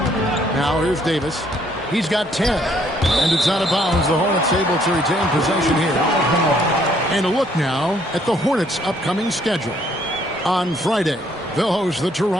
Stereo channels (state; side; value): normal; both; correlation 0.66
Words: Now here's Davis. He's got 10. And it's out of bounds. The Hornets able to retain possession here. And a look now at the Hornets' upcoming schedule. On Friday, they'll host the